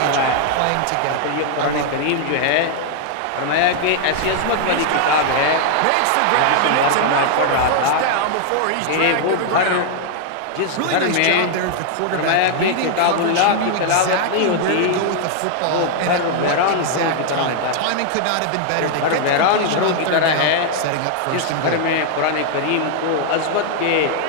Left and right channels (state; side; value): different; both; correlation 0.00